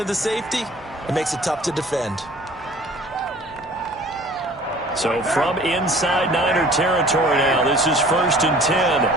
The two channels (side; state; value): both; normal; correlation 0.49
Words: of the safety, it makes it tough to defend. So from inside Niner territory now, this is 1st and 10